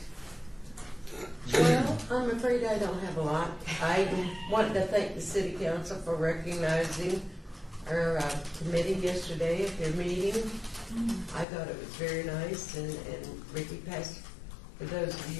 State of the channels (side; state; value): right; drops out; at 11.5 s